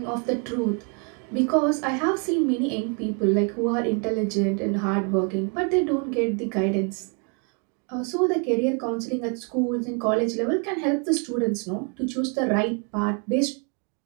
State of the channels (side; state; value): left; quieter; 37.5 dB